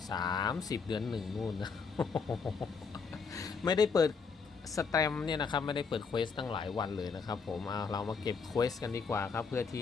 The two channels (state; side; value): quieter; right; 5.3 dB